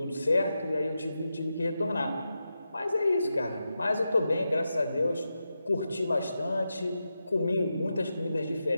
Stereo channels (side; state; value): both; inverted; correlation -0.89